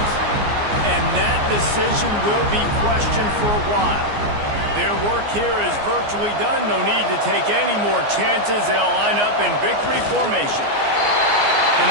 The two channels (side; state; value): left; late; 14 ms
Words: And that decision will be questioned for a while. Their work here is virtually done. No need to take any more chances. They'll line up in victory formation. And